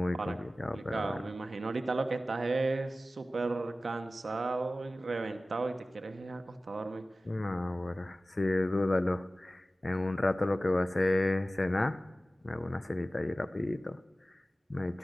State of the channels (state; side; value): normal; both; correlation 0.96